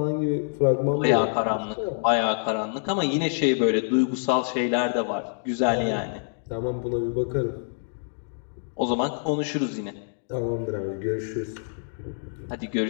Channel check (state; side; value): silent; right; digital silence